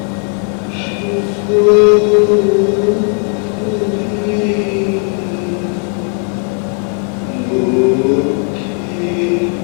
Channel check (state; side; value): quieter; right; 38.9 dB